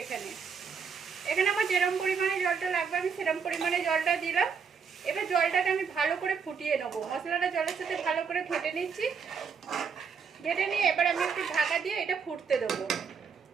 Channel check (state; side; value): quieter; left; 6.1 dB